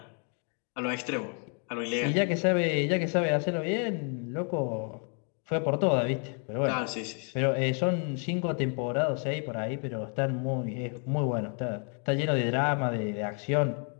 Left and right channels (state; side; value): quieter; right; 39.5 dB